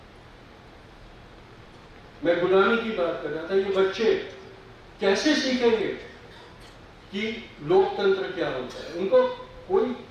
मैं गुलामी की बात कर रहा था। ये बच्चे कैसे सीखेंगे कि लोकतंत्र क्या होता है? उनको कोई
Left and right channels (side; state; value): both; identical; correlation 1.00